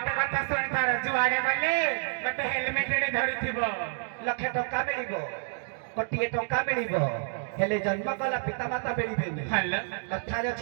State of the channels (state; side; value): silent; left; 56 dB below the other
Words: कथा सुनि तार जुआडे गले गोटे हेलमेट रे धरिथिबो लक्षे टका मिलिबो कोटिए टका मिलिबो हेले जन्म कला पिता माता मिलिबेनी हल्ला कथा रे